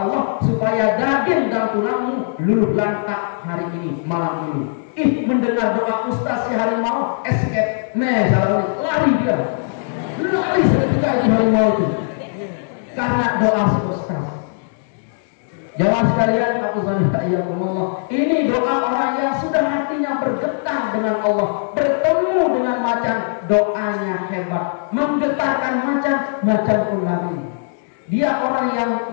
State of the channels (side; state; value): right; silent; digital silence